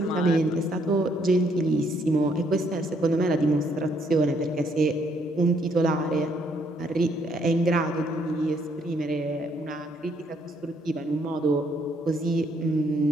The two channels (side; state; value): both; normal; correlation 0.69